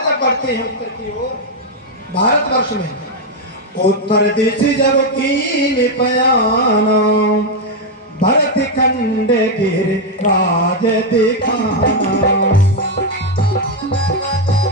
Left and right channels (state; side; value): normal; both; correlation 0.03